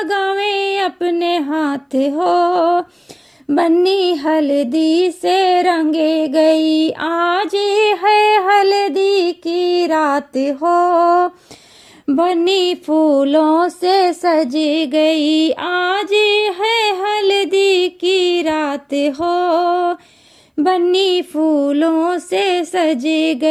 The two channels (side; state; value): both; identical; correlation 1.00